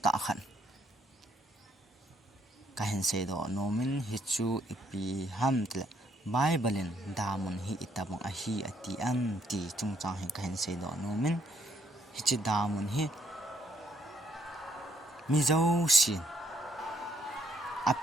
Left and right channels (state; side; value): normal; both; correlation 0.70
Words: ta khan ka hen se do nomin hi chu ipi ham tle bible damun hi itabang a hi ati am ti chung chang hi ka hen se do nomin hi chi damun hi mi zo sin